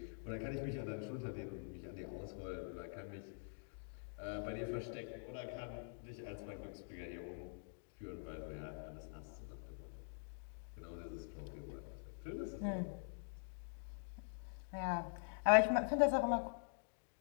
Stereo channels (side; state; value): right; silent; digital silence